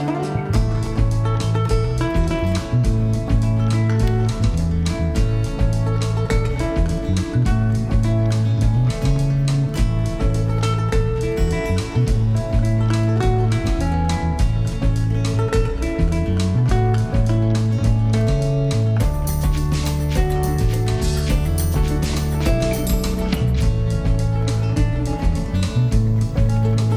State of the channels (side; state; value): both; identical; correlation 1.00